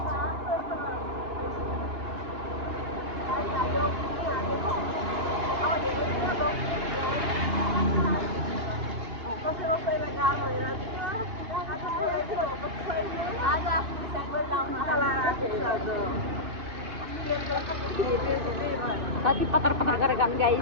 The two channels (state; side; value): late; left; 2.8 ms